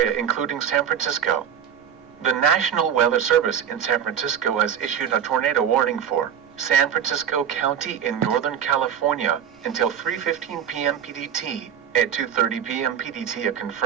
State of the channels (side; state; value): left; quieter; 8.7 dB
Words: including San Francisco. The National Weather Service in San Francisco has issued a tornado warning for San Francisco County in Northern California until 3:15 p.m. PDT. At 2:30 p.m. PDT, a